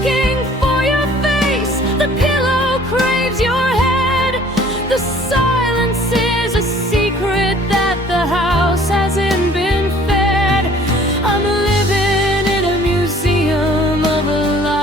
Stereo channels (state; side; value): normal; both; correlation 0.53